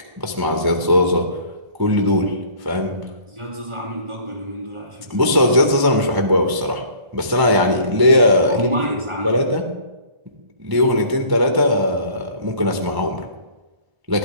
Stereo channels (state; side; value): late; left; 1.0 ms